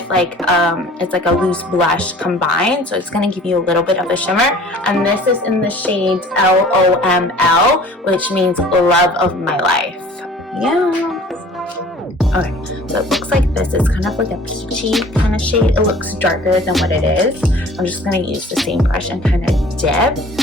like it's like a loose blush combined, so it's going to give you a little bit of a shimmer, and this is in the shade LOML, which means love of my life. Yeah. Okay, so it looks like this is kind of like a peachy kind of shade. It looks darker than what it is. I'm just going to use the same brush and kind of dip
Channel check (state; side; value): normal; both; correlation 0.48